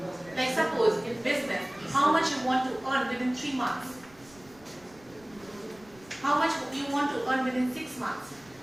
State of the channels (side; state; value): right; noise; rumble, 26 dB below the sound